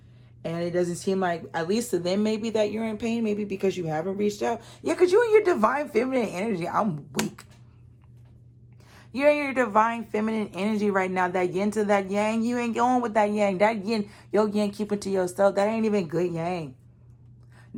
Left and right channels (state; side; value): identical; both; correlation 1.00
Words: And it doesn't seem like, at least to them, maybe that you're in pain, maybe because you haven't reached out. Yeah, because you're in your divine feminine energy. I'm weak. You're in your divine feminine energy right now. That yin to that yang, you ain't going with that yang. That yin, your yang, keep it to yourself. That ain't even good yang.